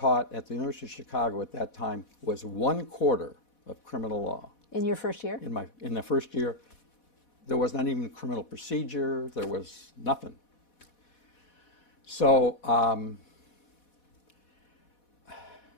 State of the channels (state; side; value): late; right; 4.1 ms